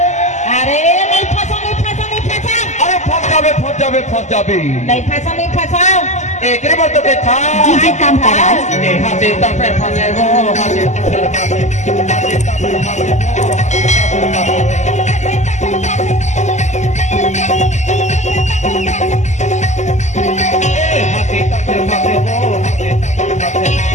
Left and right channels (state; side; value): late; right; 0.34 ms